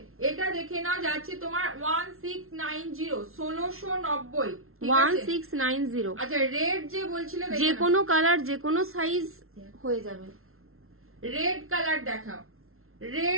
এটা দেখে নাও, যাচ্ছে তোমার 1690, 1690, 1690। আচ্ছা রেড যে বলছিলে, যে কোনো কালার, যে কোনো সাইজ হয়ে যাবে। রেড কালার দেখাও,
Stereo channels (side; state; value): left; late; 0.62 ms